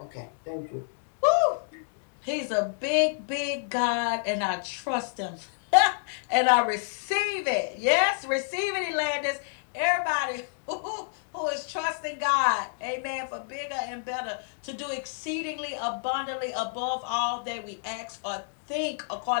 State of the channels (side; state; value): right; silent; digital silence